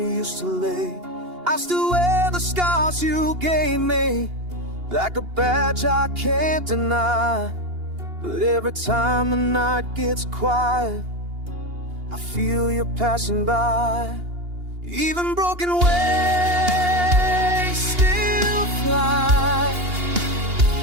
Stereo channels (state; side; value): late; left; 2.8 ms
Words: used to lay. I still wear the scars you gave me, like a badge I can't deny. But every time the night gets quiet, I feel you passing by. Even broken wings still fly,